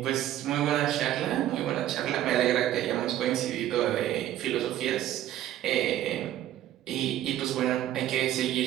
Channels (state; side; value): quieter; left; 12.8 dB